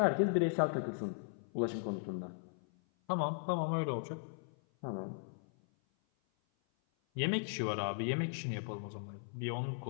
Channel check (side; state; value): right; silent; 53 dB below the other